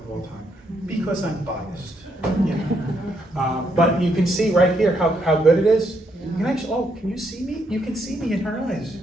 of all time, because I'm biased. You know? But you can see right here how good it is. You can actually, oh, can you see me? You can see me in her eyes.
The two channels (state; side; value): normal; both; correlation 0.76